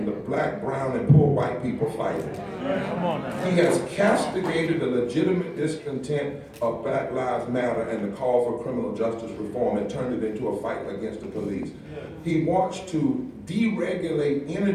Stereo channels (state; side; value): identical; both; correlation 1.00